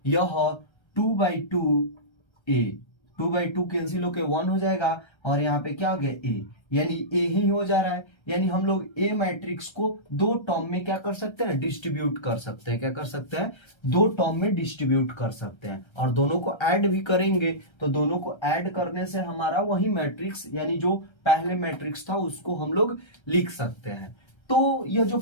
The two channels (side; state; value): right; late; 1.3 ms